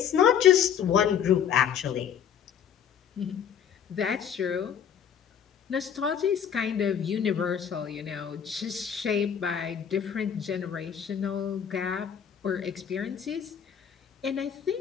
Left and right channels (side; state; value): right; quieter; 8.4 dB